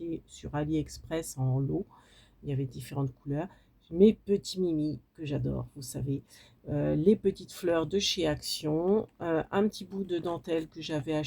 sur AliExpress en lot. Il y avait différentes couleurs. Mes petits Mimi que j'adore, vous savez. Les petites fleurs de chez Action. Un petit bout de dentelle que j'avais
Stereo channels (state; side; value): identical; both; correlation 1.00